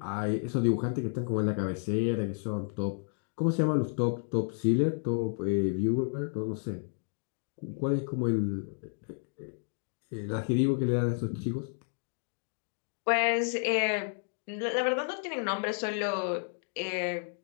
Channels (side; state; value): right; silent; 57 dB below the other